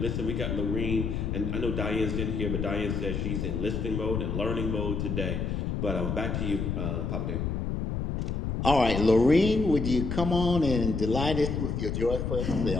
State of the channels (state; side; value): noise; left; rumble, 2 dB below the sound